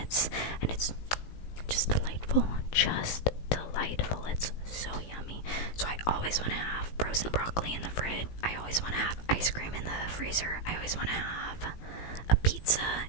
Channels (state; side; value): late; right; 18 ms